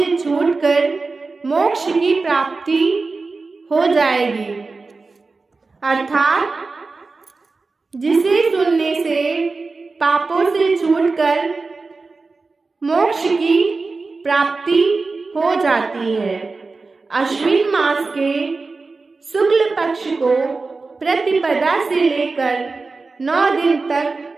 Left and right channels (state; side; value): quieter; left; 3.9 dB